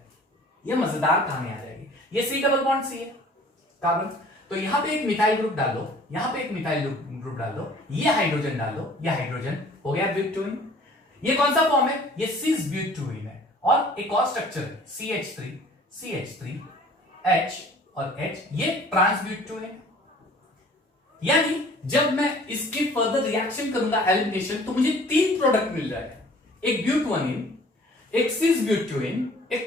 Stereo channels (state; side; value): normal; both; correlation 0.51